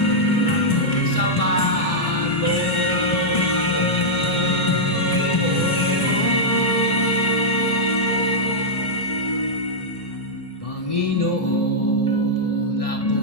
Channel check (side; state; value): right; late; 1.7 ms